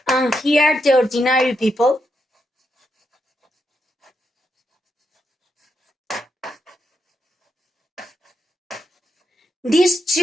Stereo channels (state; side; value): normal; both; correlation 0.82